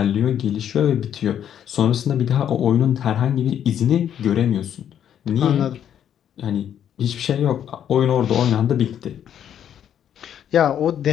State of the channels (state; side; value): quieter; right; 9.6 dB